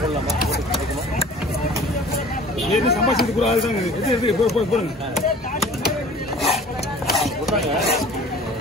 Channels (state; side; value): normal; both; correlation 0.46